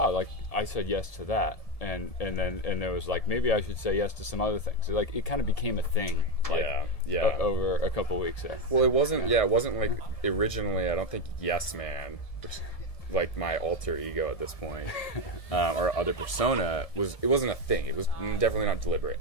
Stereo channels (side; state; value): right; late; 1.7 ms